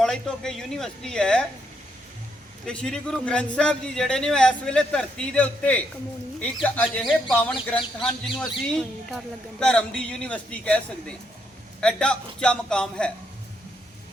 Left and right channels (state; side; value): normal; both; correlation 0.76